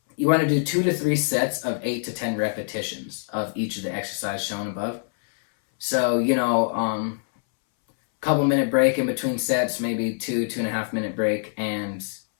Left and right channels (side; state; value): right; silent; 62 dB below the other